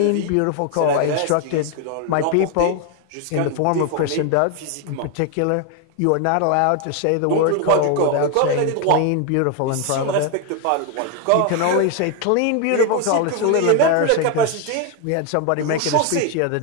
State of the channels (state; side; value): different; both; correlation 0.01